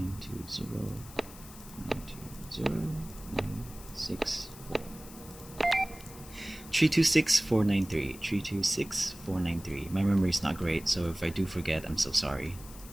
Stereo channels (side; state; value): left; noise; hiss, 17 dB below the sound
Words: 326493. 326493. My memory is not great, so if I do forget, I'm so sorry.